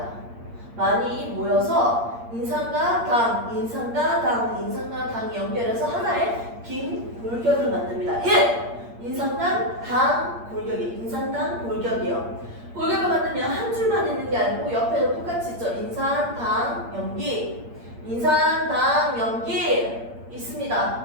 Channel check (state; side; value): late; left; 8.6 ms